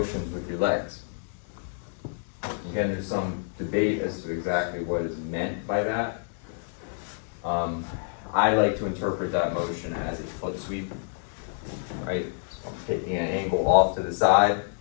with your legs. Again, there's some debate as to exactly what is meant by that. I like to interpret that motion as a foot sweep, right? So I'm taking an angle off to the side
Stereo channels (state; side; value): silent; right; digital silence